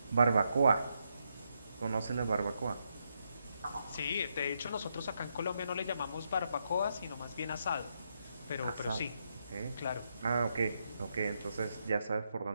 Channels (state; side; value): inverted; both; correlation -0.80